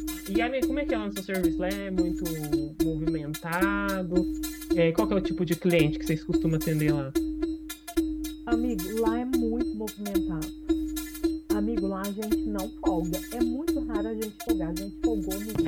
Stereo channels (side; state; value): both; identical; correlation 1.00